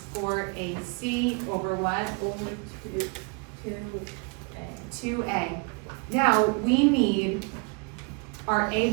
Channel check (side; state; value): left; quieter; 33.2 dB